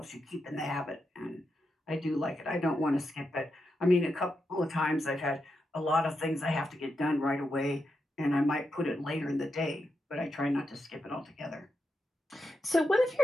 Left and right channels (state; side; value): normal; both; correlation 0.86